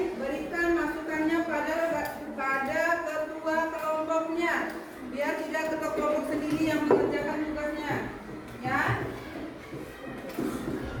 berikan masukannya pada ketua kelompoknya, biar tidak ketua kelompok sendiri yang mengerjakan tugasnya, ya.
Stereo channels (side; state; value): both; identical; correlation 1.00